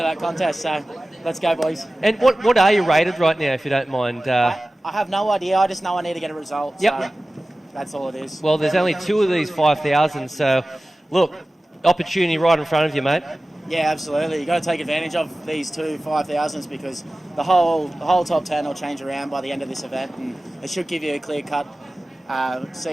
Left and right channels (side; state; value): both; normal; correlation 0.96